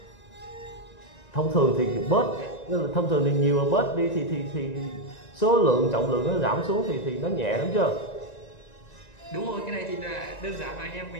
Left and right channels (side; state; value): right; late; 1.9 ms